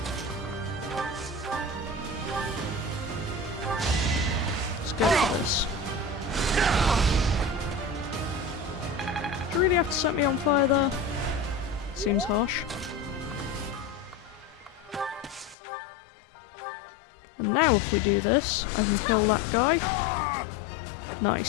Let's go for this. Do you really have to set me on fire there? Seems harsh. And now if we do this, I can kill that guy.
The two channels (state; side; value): drops out; right; at 15.6 s